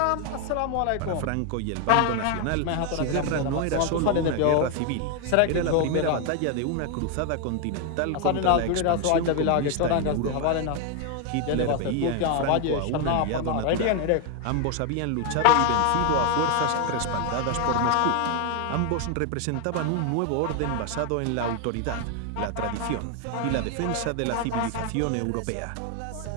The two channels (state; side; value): different; both; correlation 0.01